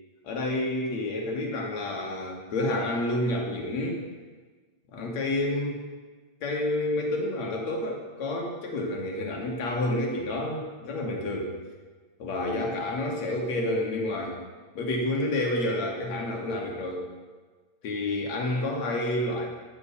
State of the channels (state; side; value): late; right; 8.7 ms